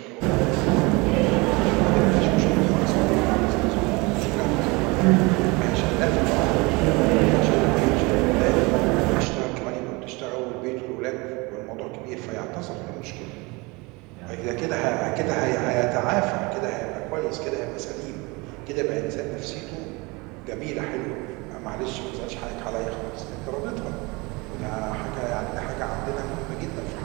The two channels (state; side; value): quieter; left; 25.8 dB